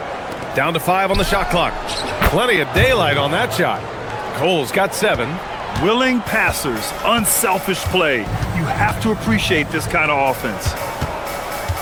Down to 5 on the shot clock. Plenty of daylight on that shot. Cole's got 7. Willing passers, unselfish play. You have to appreciate this kind of offense.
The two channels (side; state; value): both; identical; correlation 1.00